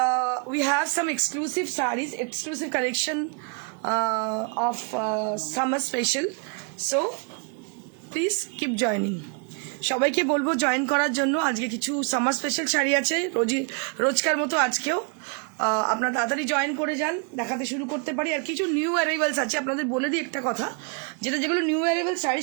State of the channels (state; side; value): quieter; left; 37.7 dB